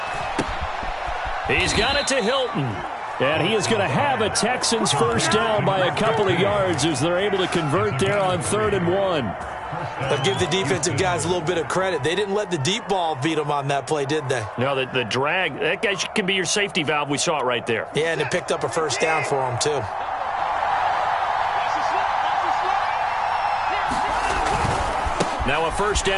He's got it to Hilton. And he is going to have a Texans first down by a couple of yards as they're able to convert there on 3rd and 1. But give the defensive guys a little bit of credit. They didn't let the deep ball beat them on that play, did they? No, the drag, that guy can be your safety valve. We saw it right there. Yeah, and it picked up a first down for them, too. Now a first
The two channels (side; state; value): both; identical; correlation 1.00